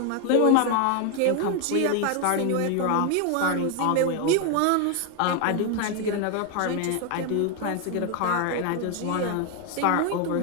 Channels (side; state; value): both; different; correlation 0.01